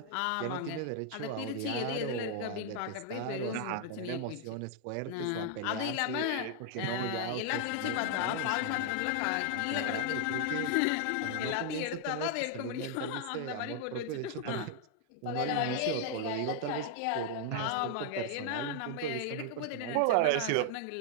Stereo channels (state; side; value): different; both; correlation 0.00